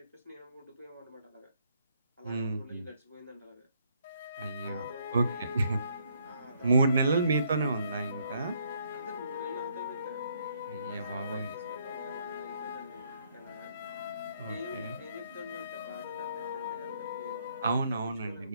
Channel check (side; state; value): both; inverted; correlation -0.70